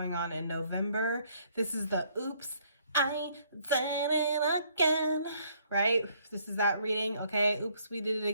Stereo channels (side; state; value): both; inverted; correlation -0.66